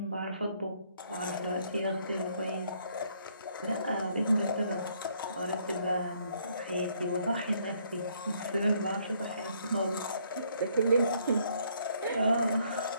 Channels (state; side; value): inverted; both; correlation -0.68